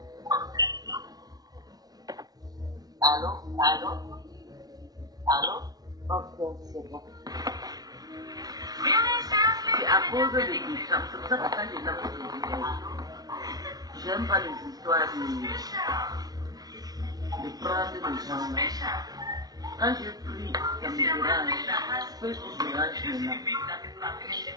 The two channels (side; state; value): left; late; 0.19 ms